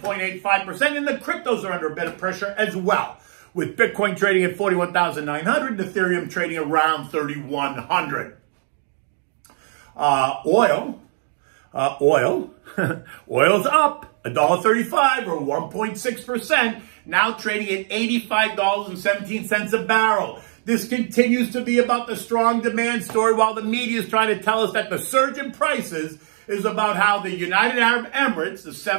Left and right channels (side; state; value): left; silent; digital silence